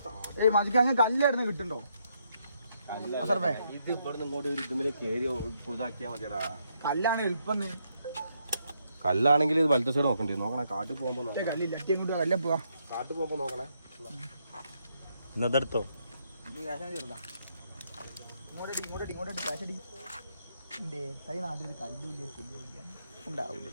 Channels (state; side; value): inverted; both; correlation -0.76